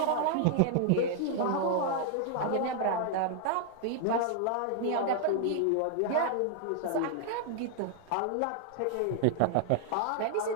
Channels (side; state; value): both; different; correlation -0.01